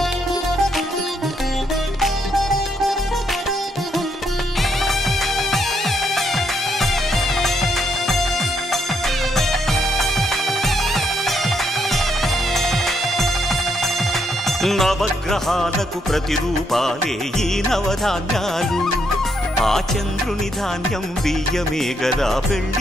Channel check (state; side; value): normal; both; correlation 0.76